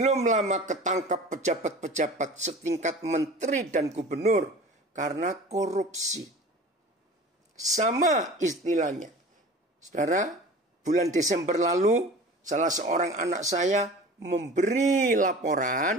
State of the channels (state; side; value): normal; both; correlation 0.39